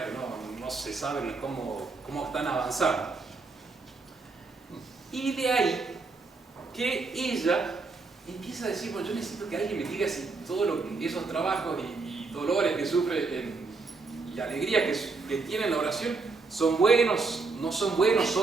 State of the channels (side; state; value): left; quieter; 4.0 dB